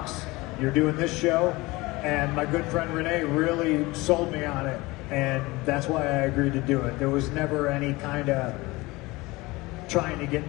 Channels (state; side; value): quieter; right; 21.9 dB